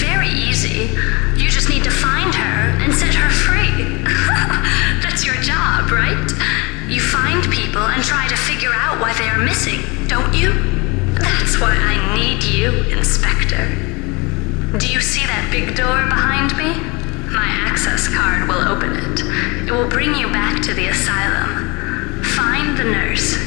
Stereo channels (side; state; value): right; quieter; 27.0 dB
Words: easy. You just need to find her and set her free. That's your job, right? You find people and try to figure out why they are missing, don't you? That's why I need you, Inspector. Do you see that big door behind me? My access card will open it. It will bring you back to the asylum. Find the nurse